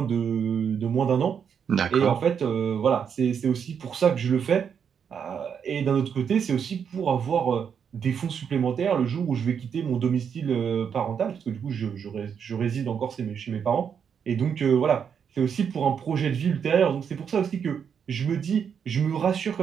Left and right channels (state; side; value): quieter; left; 7.4 dB